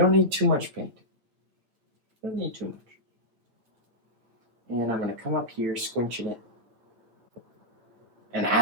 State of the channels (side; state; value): left; late; 8.9 ms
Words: need too much paint. You don't need too much. And I'm going to come up here, squinching it. And